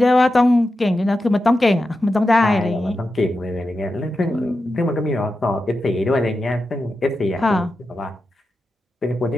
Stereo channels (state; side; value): normal; both; correlation 0.90